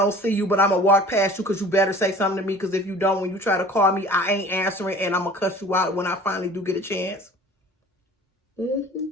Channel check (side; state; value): both; normal; correlation 0.45